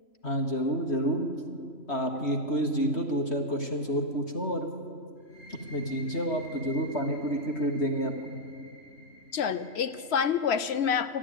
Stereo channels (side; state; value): right; late; 3.0 ms